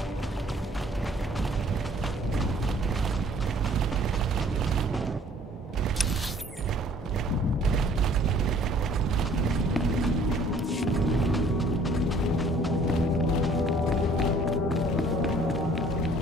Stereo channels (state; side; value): normal; both; correlation 0.56